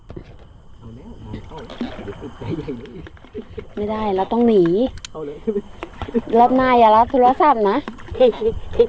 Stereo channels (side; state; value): both; identical; correlation 1.00